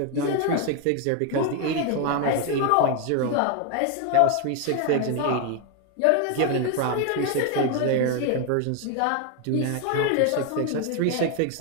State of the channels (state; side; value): different; both; correlation 0.01